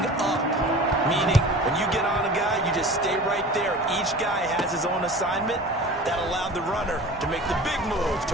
meaning when you get on a guy, you just stay right there. Each guy has his own assignment. That allowed the runner to make the big move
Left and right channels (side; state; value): both; normal; correlation 0.39